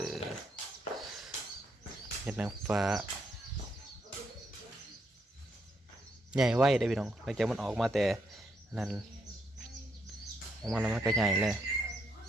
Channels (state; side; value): normal; both; correlation 0.76